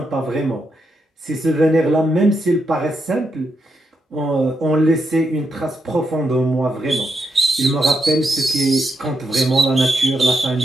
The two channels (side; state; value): both; normal; correlation 0.82